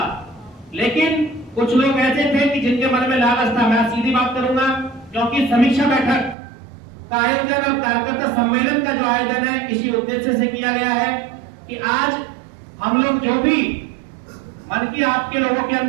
लेकिन कुछ लोग ऐसे थे कि जिनके मन में लालच था। मैं सीधी बात करूंगा, क्योंकि समीक्षा बैठक का आयोजन और कार्यकर्ता सम्मेलन का जो आयोजन है इसी उद्देश्य से किया गया है कि आज हम लोग जो भी मन की आपके लोगों के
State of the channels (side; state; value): left; drops out; at 6.4 s